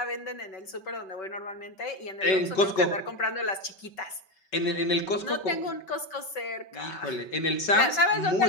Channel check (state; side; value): late; right; 5.3 ms